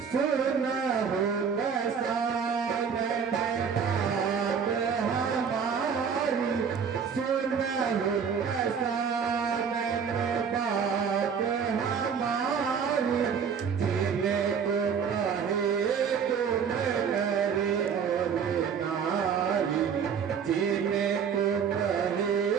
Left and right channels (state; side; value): quieter; left; 6.8 dB